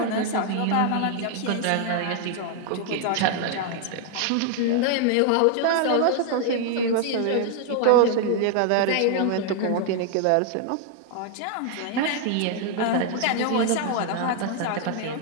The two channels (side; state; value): both; different; correlation 0.00